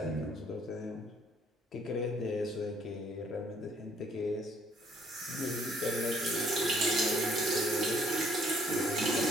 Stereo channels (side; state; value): both; normal; correlation 0.64